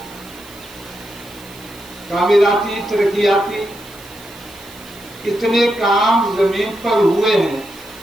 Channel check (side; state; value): right; noise; hiss, 21 dB below the sound